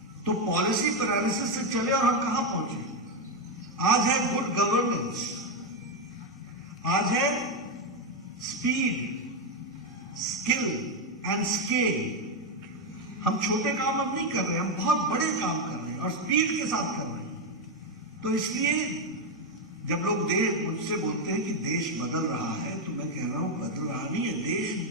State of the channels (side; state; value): both; normal; correlation 0.06